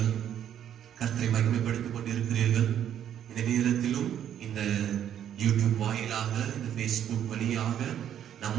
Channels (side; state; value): left; quieter; 10.0 dB